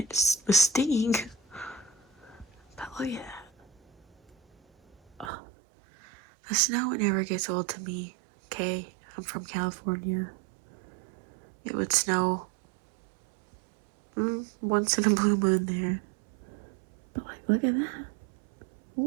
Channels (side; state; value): left; drops out; at 5.3 s